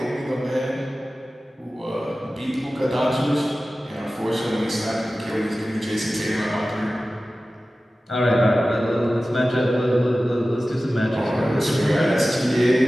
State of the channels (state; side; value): normal; both; correlation 0.96